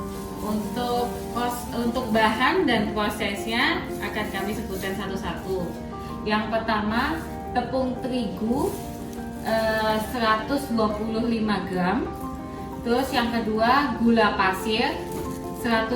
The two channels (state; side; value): identical; both; correlation 1.00